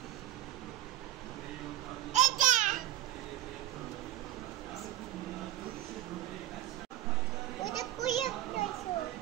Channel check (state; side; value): quieter; left; 14.7 dB